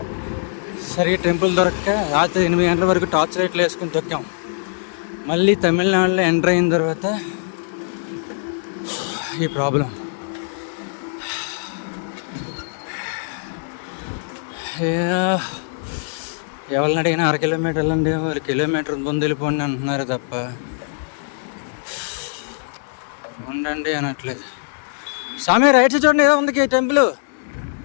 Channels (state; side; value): silent; right; digital silence